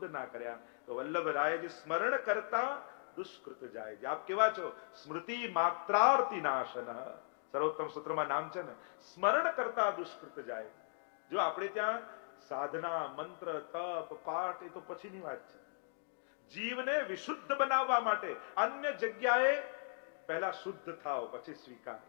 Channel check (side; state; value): right; silent; digital silence